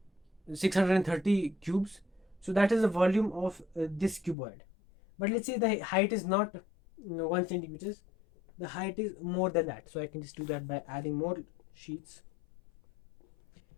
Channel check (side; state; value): right; drops out; at 4.4 s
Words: cubes. So that is the volume of this cuboid. But let's say the height is not 1 centimeters, the height is more than that. So I can just do that by adding more sheets.